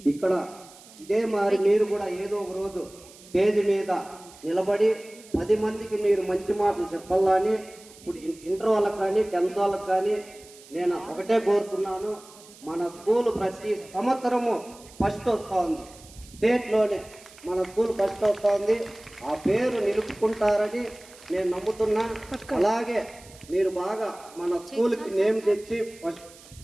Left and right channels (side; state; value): right; noise; hiss, 22 dB below the sound